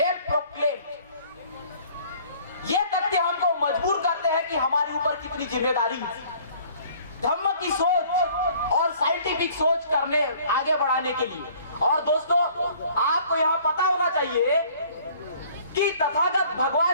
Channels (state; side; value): inverted; both; correlation -0.54